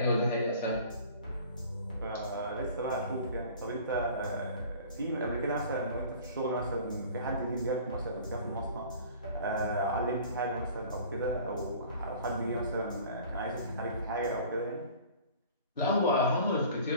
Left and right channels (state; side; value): inverted; both; correlation -0.46